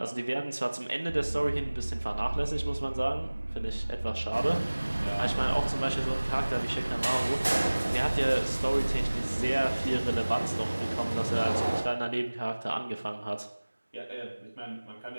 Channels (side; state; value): both; inverted; correlation -1.00